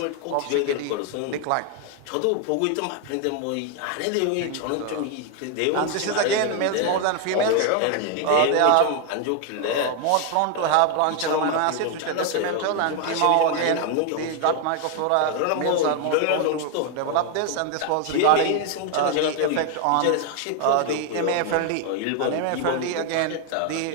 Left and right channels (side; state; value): both; different; correlation 0.01